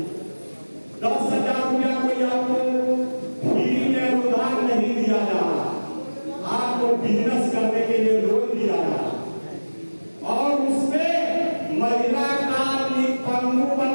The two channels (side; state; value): both; inverted; correlation -1.00